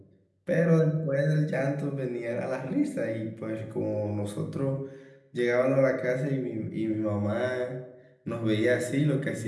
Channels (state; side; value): identical; both; correlation 1.00